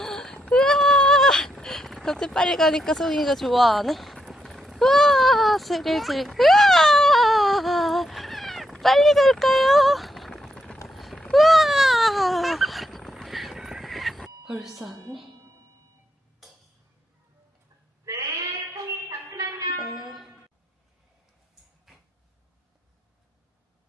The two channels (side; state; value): both; normal; correlation 0.80